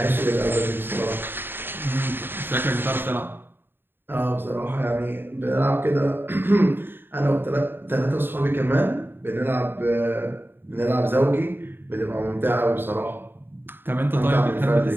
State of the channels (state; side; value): late; left; 0.10 ms